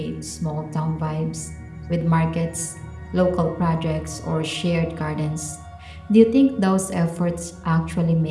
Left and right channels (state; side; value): identical; both; correlation 1.00